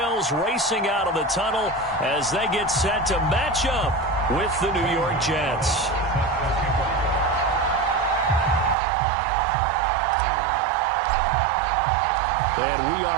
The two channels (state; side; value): drops out; left; at 8.8 s